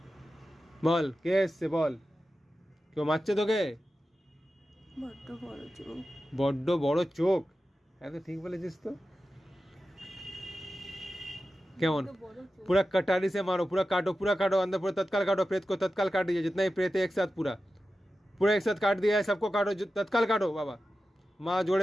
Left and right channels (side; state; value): both; normal; correlation 0.93